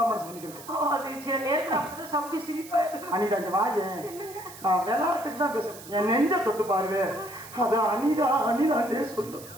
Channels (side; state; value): right; noise; hiss, 17 dB below the sound